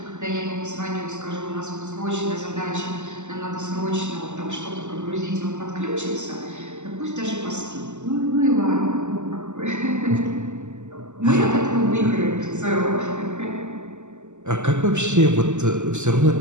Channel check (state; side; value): late; left; 0.84 ms